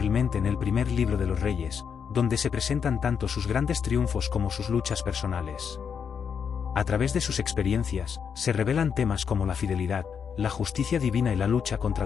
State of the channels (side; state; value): right; quieter; 7.0 dB